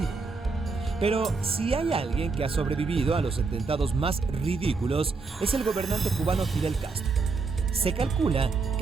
Pero si hay alguien que ha sobrevivido a los atentados más ridículos, es el gobernante cubano Fidel Castro. Se calcula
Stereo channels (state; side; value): quieter; left; 4.3 dB